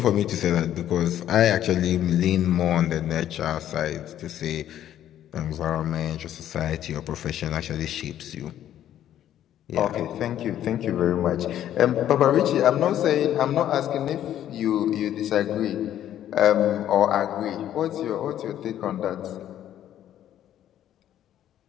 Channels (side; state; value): right; quieter; 11.4 dB